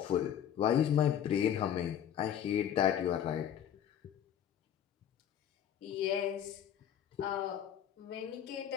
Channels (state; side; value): quieter; right; 9.7 dB